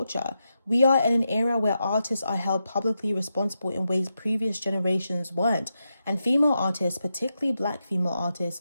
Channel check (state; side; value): inverted; both; correlation -0.87